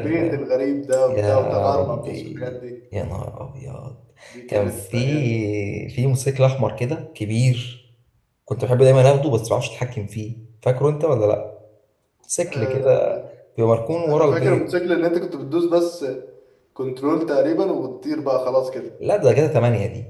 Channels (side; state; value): both; identical; correlation 1.00